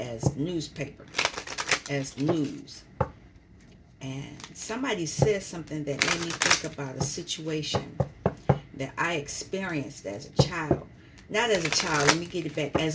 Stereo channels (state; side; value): identical; both; correlation 1.00